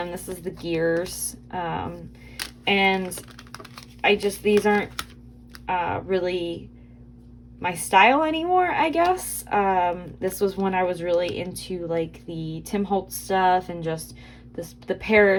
This is the gears. And these aren't really my style anymore, I guess. This was when I was really into like the Tim Holtz stuff and just the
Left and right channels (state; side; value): identical; both; correlation 1.00